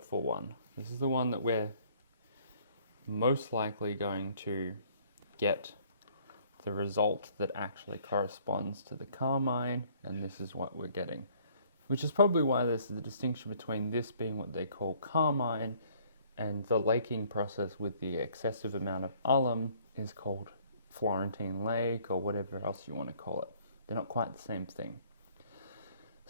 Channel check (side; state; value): both; inverted; correlation -0.60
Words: one. This is the one that we're most likely going to get the result that actually corresponds to the carmine, and this is what we're getting. Which is probably why there's the distinction between this being what they call carmine and the laking process with the excessive amount of alum is called Florentine lake or whatever else you want to call it. They're not quite the same thing.